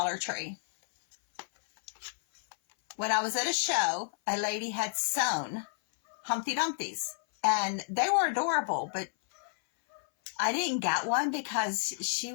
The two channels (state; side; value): silent; right; 57 dB below the other